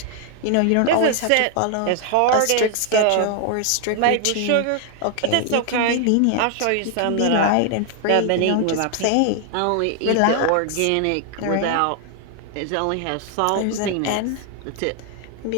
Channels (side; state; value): both; different; correlation 0.00